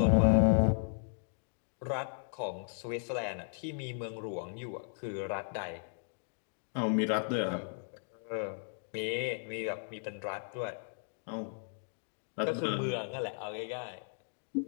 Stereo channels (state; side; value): silent; right; digital silence